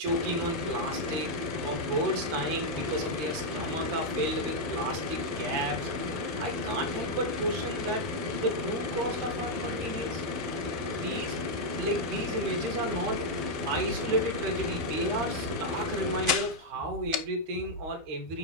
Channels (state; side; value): late; left; 12 ms